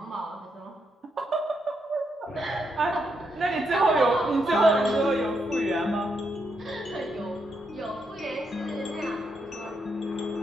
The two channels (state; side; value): normal; both; correlation 0.80